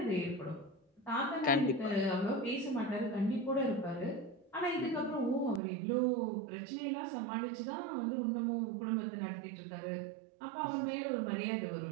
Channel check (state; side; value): drops out; left; at 5.6 s